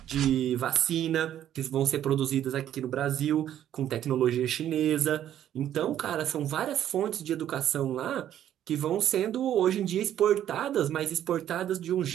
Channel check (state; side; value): quieter; left; 11.1 dB